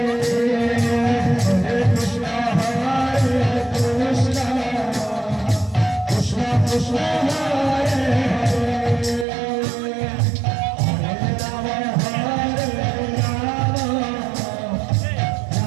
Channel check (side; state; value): left; drops out; at 9.2 s